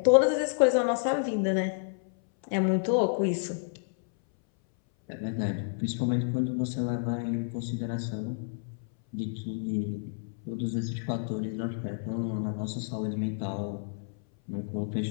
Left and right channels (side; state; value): right; silent; 58 dB below the other